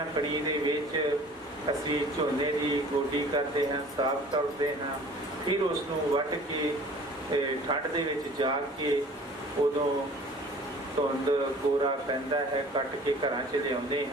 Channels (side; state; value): both; normal; correlation 0.47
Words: कणी दे विच असी झोने की गोडी करते हैं, साफ करते हैं, फिर उसनूं वट के ठंड दे विच जा के उदों धुंद कोरा पैंदा है, कट के घरां च लिआउंदे